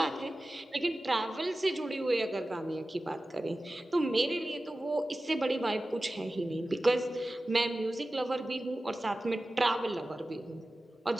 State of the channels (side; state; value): both; normal; correlation 0.95